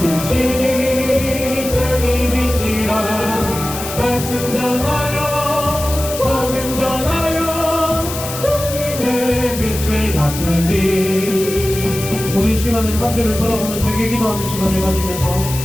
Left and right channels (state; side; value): noise; left; hiss, 8 dB below the sound